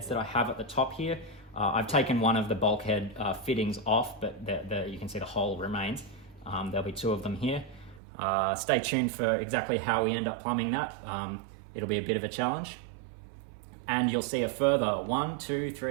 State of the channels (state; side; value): drops out; left; at 8.0 s